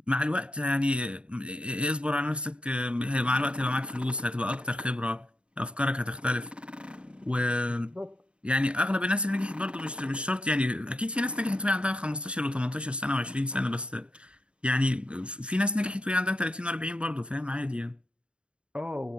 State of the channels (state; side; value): late; left; 0.056 ms